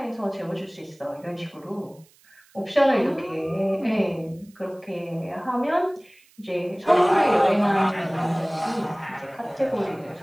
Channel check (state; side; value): noise; right; hiss, 30 dB below the sound